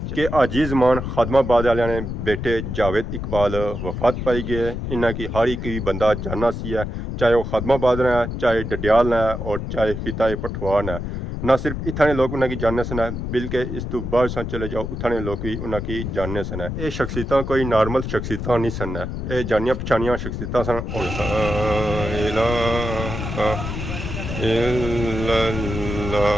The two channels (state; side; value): noise; left; rumble, 5 dB below the sound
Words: कि आजीज मान खादमाबाद वाले ने बेटे जावेद इकबाल वफात पाई गए। इन्हें की हर एक भी बंदा जानना सी है, चाहे वह खादमाबाद ने, चाहे डडियाल ने और चाहे हिताए पठवार ने। ना सिर्फ इतने लोग उन्हें जानने सन है, बल्कि इस तो बाद चले जाओ उतने लोग भी उन्हें जानने सन है। ये शख्सियत कोई नॉर्मल शख्सियत नहीं सन है, ये जानिया पछानिया शख्सियत सन।